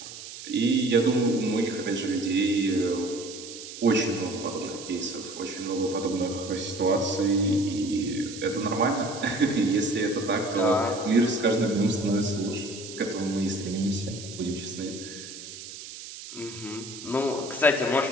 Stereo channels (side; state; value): right; noise; hiss, 12 dB below the sound